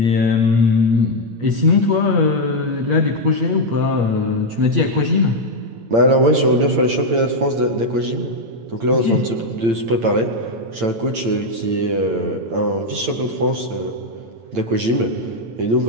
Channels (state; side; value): late; left; 8.8 ms